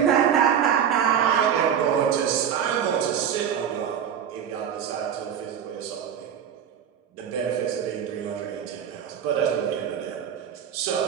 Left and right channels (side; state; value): left; quieter; 8.5 dB